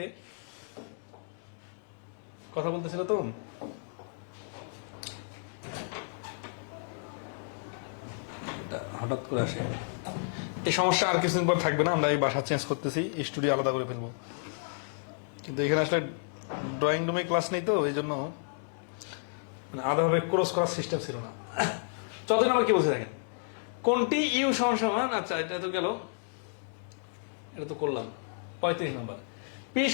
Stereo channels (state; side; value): silent; right; digital silence